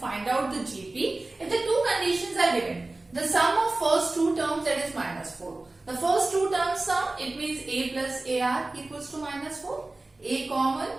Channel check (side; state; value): left; quieter; 3.0 dB